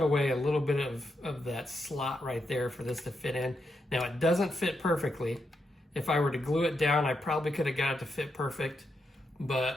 away a little bit of that slot right there for this to fit in. Now it doesn't fit perfectly. If I were to glue it down, I probably could have got it to fit perfect.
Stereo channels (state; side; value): normal; both; correlation 0.83